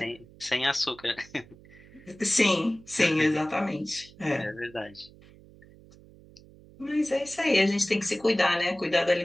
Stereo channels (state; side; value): noise; right; hum, 23 dB below the sound